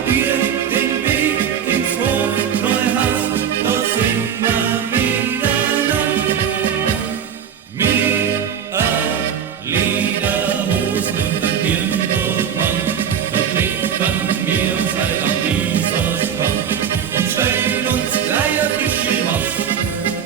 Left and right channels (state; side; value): quieter; left; 8.3 dB